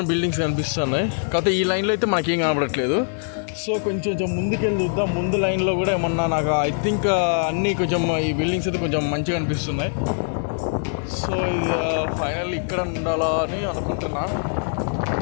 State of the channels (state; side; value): silent; right; digital silence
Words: బిల్డింగ్స్ కనిపిస్తున్నాయి, కాకపోతే ఈ లైన్లో అయితే మనకేం కనపడట్లేదు. సో కొంచెం ముందుకెళ్ళి చూద్దాం. ముందు లైన్లో కూడా ఏమన్నా నాకు ఐ థింక్ అన్నీ కొంచెం ఈ బిల్డింగ్స్ అయితే కొంచెం మంచిగా అనిపిస్తున్నాయి. సో ఇది ఫైనల్ ఇక్కడ ఉండాలా అని అనుకుంటున్నా.